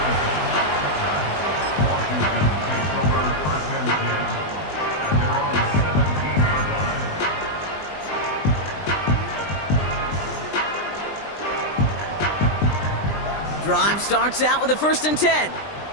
Drive starts out with a first and 10.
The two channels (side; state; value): right; late; 20 ms